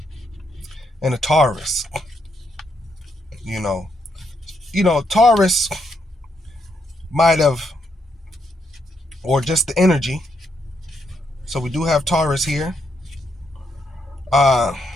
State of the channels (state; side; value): normal; both; correlation 0.77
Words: and a Taurus. You know, Taurus might have, or just the energy. So we do have Taurus here.